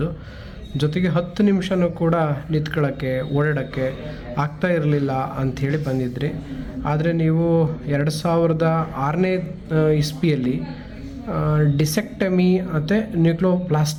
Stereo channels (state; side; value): identical; both; correlation 1.00